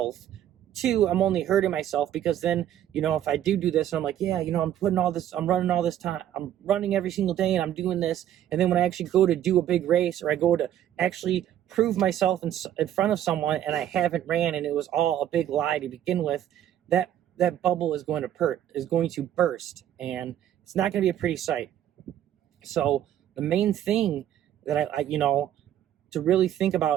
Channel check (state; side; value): quieter; left; 11.3 dB